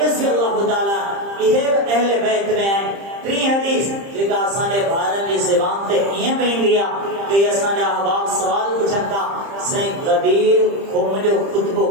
رضی اللہ تعالیٰ یہ اہل بیت میں آئیں 3 حدیث جگہ آسانے بھارت کی زبان تے یہ بین دیا کہ آسانے احباب سوال پوچھتا سائیں غدیر خمجو خطبو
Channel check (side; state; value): left; late; 30 ms